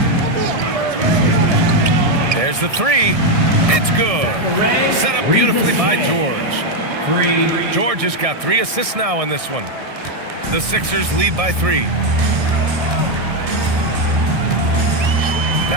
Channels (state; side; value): late; left; 1.6 ms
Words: There's the 3, It's good. Set up beautifully by George. 3. George has got 3 assists now in this one. The Sixers lead by 3.